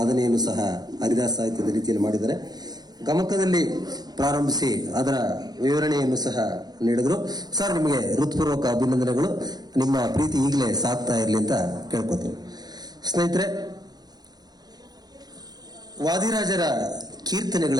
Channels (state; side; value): late; left; 0.19 ms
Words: ಸಹ ಹರಿದಾಸ ಸಾಹಿತ್ಯದ ರೀತಿಯಲ್ಲಿ ಮಾಡಿದ್ದಾರೆ. ಗಮಕದಲ್ಲಿ ಪ್ರಾರಂಭಿಸಿ ಅದರ ವಿವರಣೆಯನ್ನು ಸಹ ನೀಡಿದ್ರು. ಸರ್, ನಿಮಗೆ ಹೃತ್ಪೂರ್ವಕ ಅಭಿನಂದನೆಗಳು. ನಿಮ್ಮ ಪ್ರೀತಿ ಈಗಲೇ ಸಾಕ್ತಾ ಇರಲಿ ಅಂತ ಕೇಳ್ಕೊತೀನಿ. ಸ್ನೇಹಿತರೆ, ವಾದಿರಾಜರ